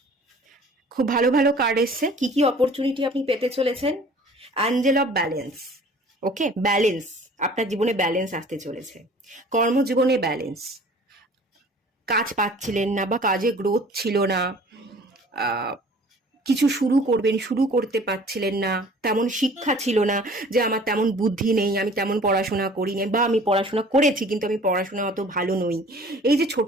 খুব ভালো ভালো কার্ড এসছে। কি কি অপরচুনিটি আপনি পেতে চলেছেন? Angel of balance, okay, balance, আপনার জীবনে ব্যালেন্স আসতে চলেছে। কর্মজীবনে ব্যালেন্স, কাজ পাচ্ছিলেন না বা কাজে গ্রোথ ছিল না, কিছু শুরু করবেন, শুরু করতে পারছিলেন না, তেমন শিক্ষা ছিল না, যে আমার তেমন বুদ্ধি নেই, আমি তেমন পড়াশোনা করিনি, বা আমি পড়াশোনা করেছি কিন্তু আমি পড়াশোনা অত ভালো নই, এই যে ছোট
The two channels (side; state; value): both; normal; correlation 0.49